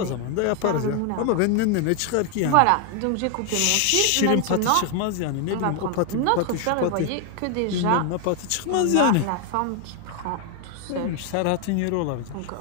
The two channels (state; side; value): different; both; correlation 0.01